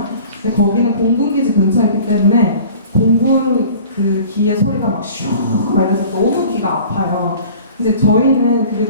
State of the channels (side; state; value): both; inverted; correlation -0.46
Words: 근데 거기는 공군기지 근처에 있기 때문에 공군 그 기의 소리가 막 슈 막 이래서 너무 귀가 아파요. 이제 저희는 그게